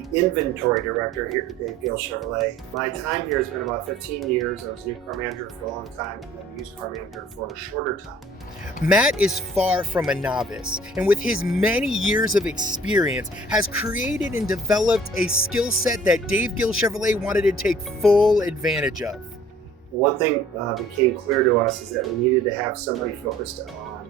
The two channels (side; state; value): both; normal; correlation 0.53